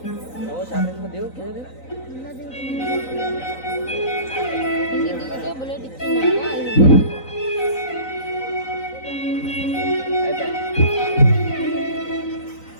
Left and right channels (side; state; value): right; late; 3.9 ms